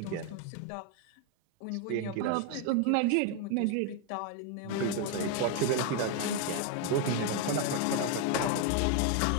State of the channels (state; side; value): different; both; correlation 0.01